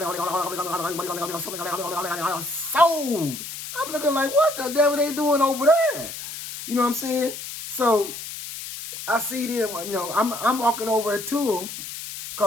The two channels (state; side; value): noise; left; hiss, 9 dB below the sound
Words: I'm looking like, what the devil they doing over there? You know what I'm saying? So I see them, you know, I'm walking over to them